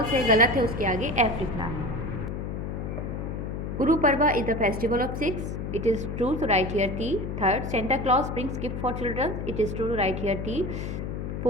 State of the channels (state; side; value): noise; left; hum, 5 dB below the sound